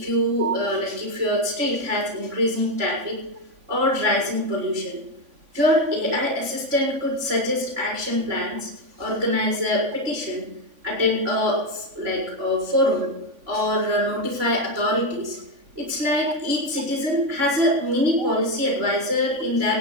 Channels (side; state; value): left; late; 3.5 ms